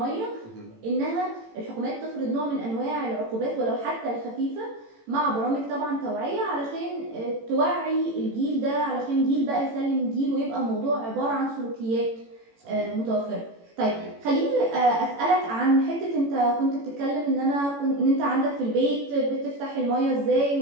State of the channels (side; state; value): left; late; 18 ms